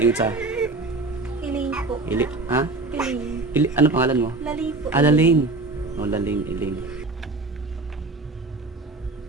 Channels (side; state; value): left; quieter; 3.3 dB